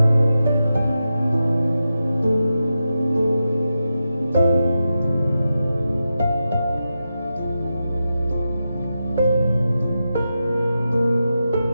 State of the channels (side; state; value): both; inverted; correlation -0.90